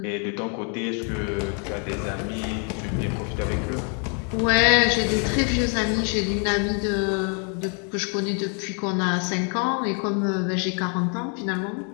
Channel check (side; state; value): right; quieter; 39.5 dB